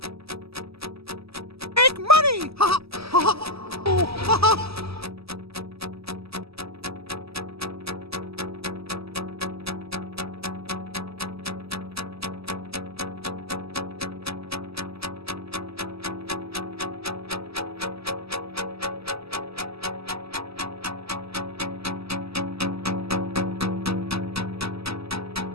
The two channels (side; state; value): left; late; 0.78 ms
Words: Make money! Ha ha ha!